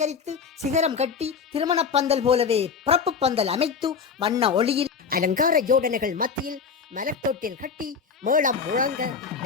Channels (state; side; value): quieter; right; 5.9 dB